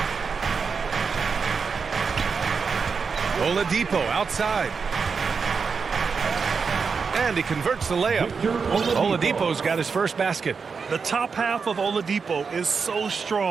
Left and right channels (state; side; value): quieter; left; 5.4 dB